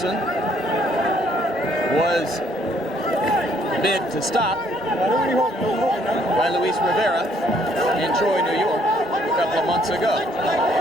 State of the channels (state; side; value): normal; both; correlation 0.66